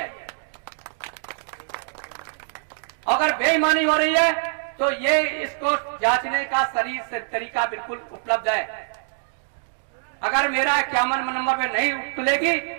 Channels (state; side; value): silent; left; digital silence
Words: अगर बेईमानी हो रही है तो ये इसको जांचने का सही तरीका बिल्कुल उपलब्ध है। अगर मेरा 51 नंबर पे नहीं तुलेगी